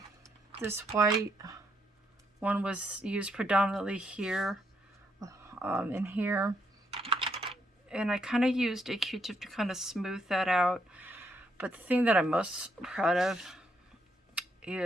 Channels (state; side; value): normal; both; correlation 0.75